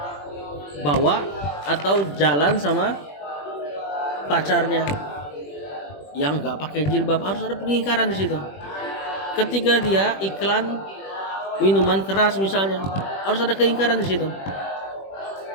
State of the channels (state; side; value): late; right; 21 ms